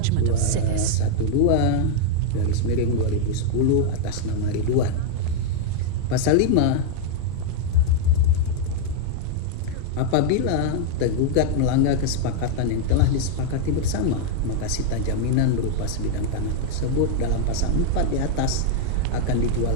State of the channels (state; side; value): different; both; correlation 0.00